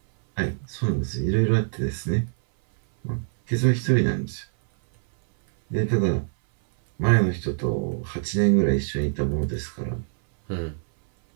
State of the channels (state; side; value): silent; left; 59 dB below the other